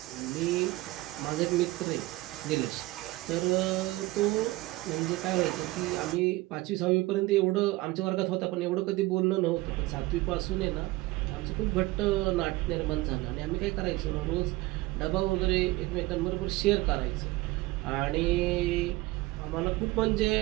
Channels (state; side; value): quieter; left; 19.9 dB